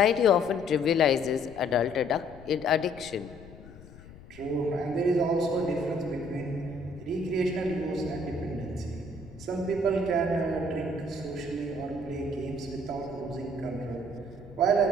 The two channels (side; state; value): left; noise; rumble, 18 dB below the sound